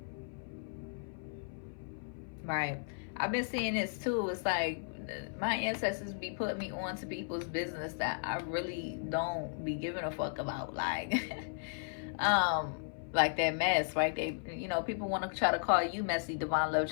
Right. I've been seeing this too. It's like my ancestors be putting me on to people's business that I really don't be giving a fuck about. Like that mess, right? They, you know, people want to try to call you messy, divine love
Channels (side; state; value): right; silent; 54 dB below the other